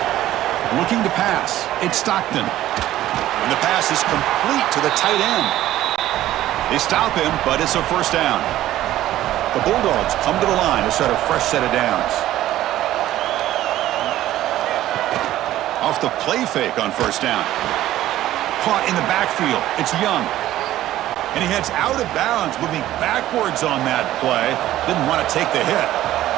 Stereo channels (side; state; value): left; quieter; 14.0 dB